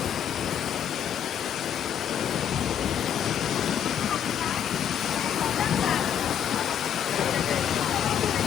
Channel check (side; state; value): right; quieter; 9.1 dB